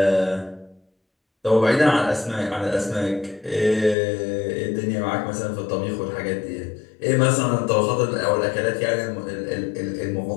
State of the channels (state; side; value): drops out; right; at 4.0 s